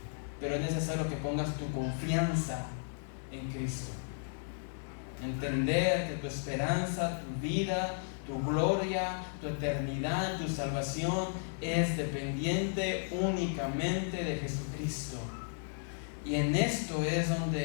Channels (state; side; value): silent; right; 55 dB below the other